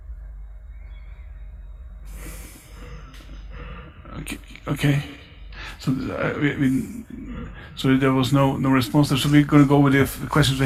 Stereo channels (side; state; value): both; identical; correlation 1.00